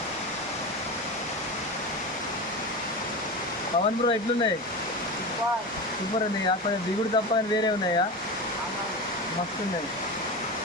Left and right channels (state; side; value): normal; both; correlation 0.24